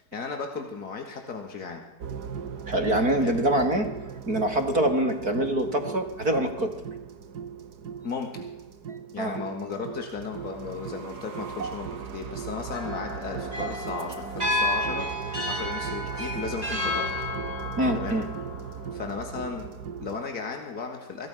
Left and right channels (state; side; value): late; left; 4.8 ms